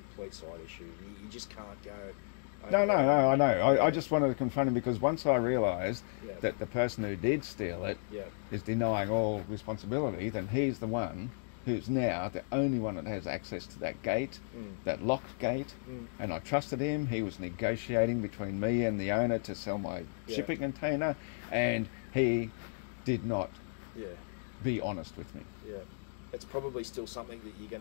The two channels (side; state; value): right; silent; digital silence